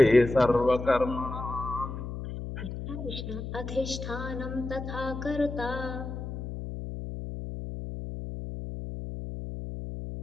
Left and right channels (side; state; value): left; noise; hum, 7 dB below the sound